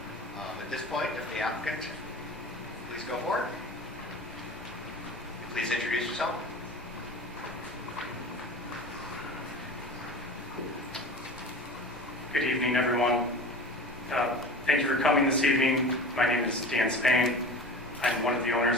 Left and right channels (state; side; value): normal; both; correlation 0.35